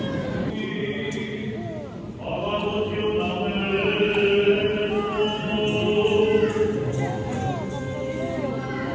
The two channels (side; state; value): both; identical; correlation 1.00